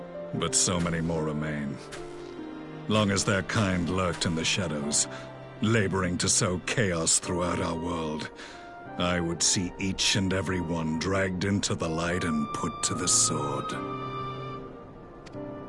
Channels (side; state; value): both; identical; correlation 1.00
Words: But so many more remain. Long as their kind lurked in the shadows, laboring to sow chaos throughout our world, I would see each and every one dragged into the light and put to the sword.